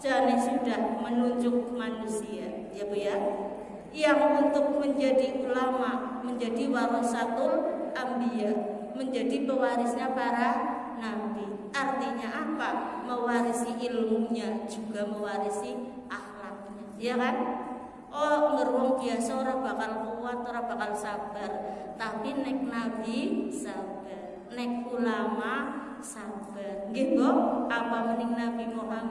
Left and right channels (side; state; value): both; identical; correlation 1.00